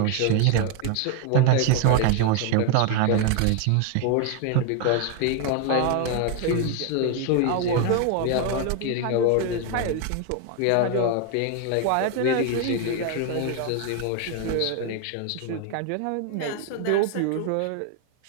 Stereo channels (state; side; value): different; both; correlation 0.01